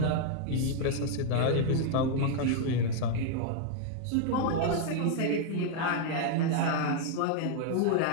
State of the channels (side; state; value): both; different; correlation 0.00